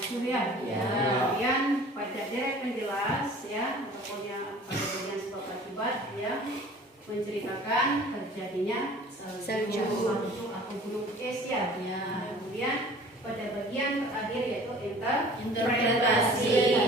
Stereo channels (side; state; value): both; normal; correlation 0.47